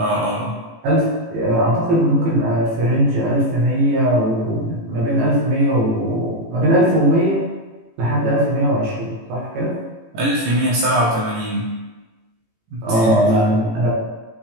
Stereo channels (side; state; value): left; late; 18 ms